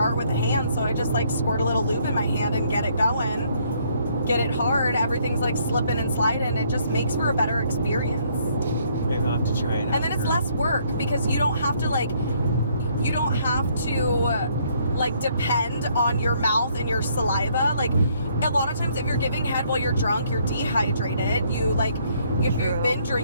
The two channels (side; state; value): both; inverted; correlation -0.67